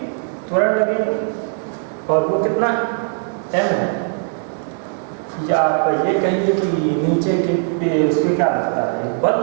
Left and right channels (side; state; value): left; silent; 65 dB below the other